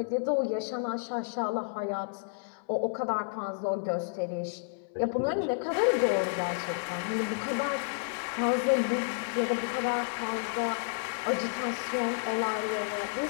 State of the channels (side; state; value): right; silent; 57 dB below the other